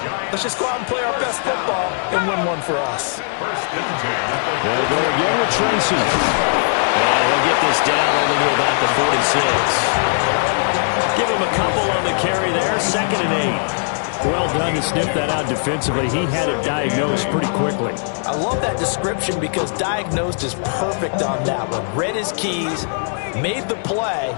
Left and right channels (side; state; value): right; silent; digital silence